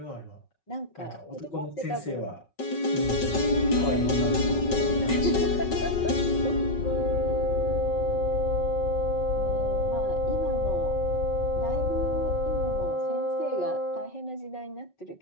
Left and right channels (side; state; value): right; late; 5.4 ms